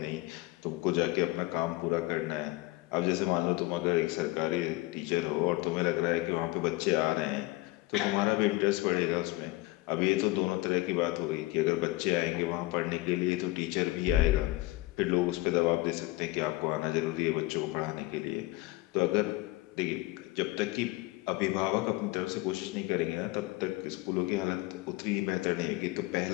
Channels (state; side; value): quieter; right; 19.7 dB